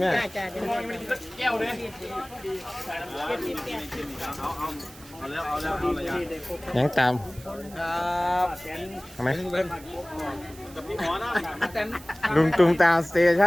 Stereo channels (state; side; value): noise; right; hiss, 21 dB below the sound